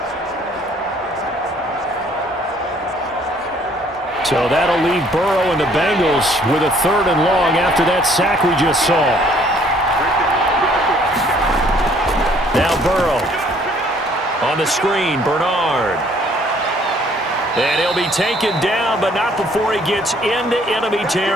So that'll leave Burrow and the Bengals with a 3rd and long after that sack we just saw. Now Burrow on the screen, Bernard. And he'll be taken down, but not before he gets into enemy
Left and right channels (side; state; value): both; normal; correlation 0.61